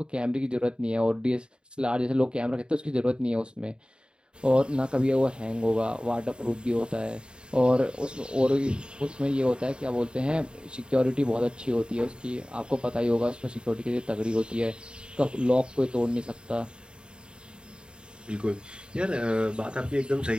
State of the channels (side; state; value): left; late; 0.051 ms